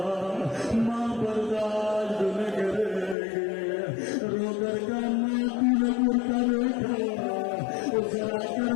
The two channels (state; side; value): drops out; right; at 3.2 s